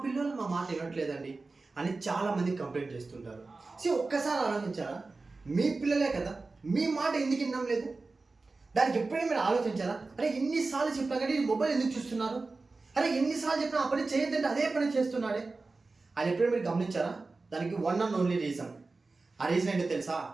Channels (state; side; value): quieter; left; 3.7 dB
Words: పిల్లలు మా మాట వినట్లేదండి అని చాలామంది కంప్లైంట్ చేస్తుంటారు. ఒక్కసారి ఆలోచించారా? మీ పిల్లలే కదా! మీ మాట ఎందుకు వినడం లేదు? దానికి ఎప్పుడైనా మీరు ఆలోచించారా? అరే ఎన్నిసార్లు చెప్పినా కానీ మొబైల్ ఎందుకు చూస్తున్నారు? అరే ఎన్నిసార్లు చెప్పినా ఆ పని చేయొద్దంటే అదే పని చేస్తున్నాడే అది ఎప్పుడైనా మీరు గమనించారా? దానికి వన్ అండ్ ఓన్లీ రీజన్. ఆ రీజన్ ఏంటో తెలుసా?